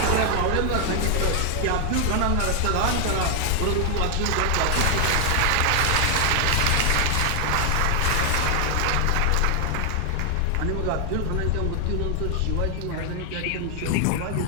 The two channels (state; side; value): different; both; correlation 0.00